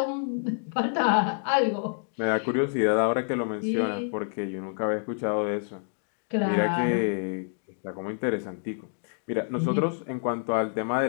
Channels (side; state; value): right; silent; digital silence